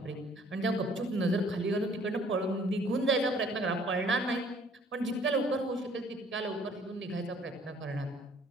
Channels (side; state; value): both; normal; correlation 0.58